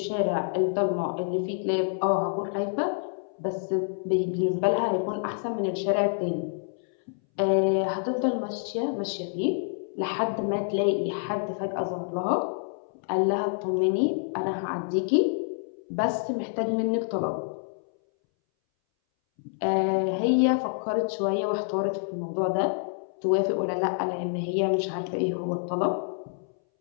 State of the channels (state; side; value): silent; right; 60 dB below the other